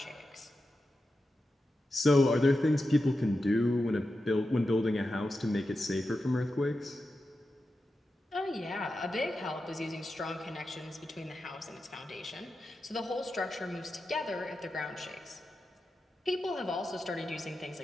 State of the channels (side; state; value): both; normal; correlation 0.90